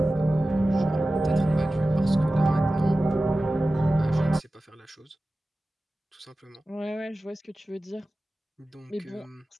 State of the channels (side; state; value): both; normal; correlation 0.95